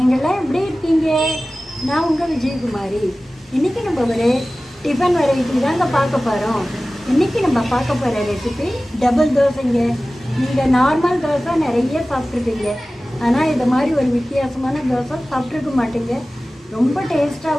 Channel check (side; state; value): both; normal; correlation 0.97